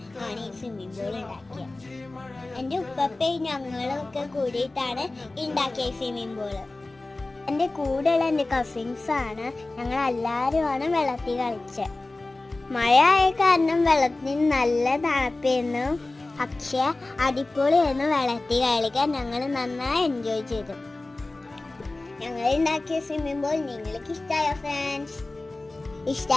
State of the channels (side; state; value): right; quieter; 3.0 dB